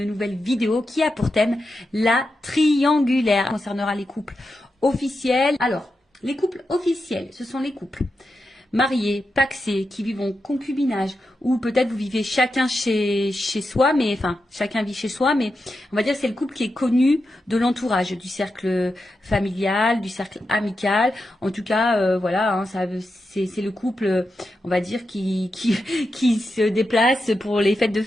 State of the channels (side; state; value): both; normal; correlation 0.88